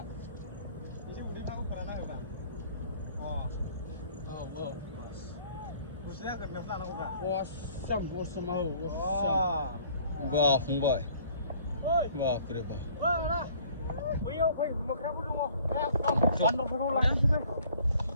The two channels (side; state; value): both; inverted; correlation -0.55